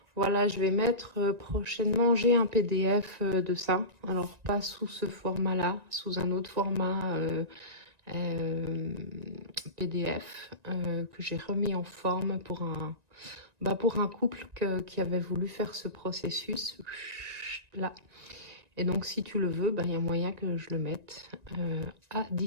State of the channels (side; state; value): left; late; 1.9 ms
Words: Voilà, je vais mettre prochainement, j'ai un PDF de ça. Alors, pas sous ce format-là, sous un autre format PDF que j'ai remis en forme pour un couple qui avait voulu faire ce processus là. Et donc, si tu le veux, il y a moyen que je le mette à